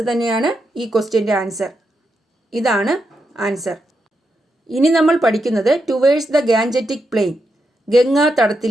തന്നെയാണ് ഈ ക്വസ്റ്റ്യൻ്റെ ആൻസർ. ഇതാണ് ആൻസർ. ഇനി നമ്മൾ പഠിക്കുന്നത് towards the Gangetic plain, Ganga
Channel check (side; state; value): both; normal; correlation 0.84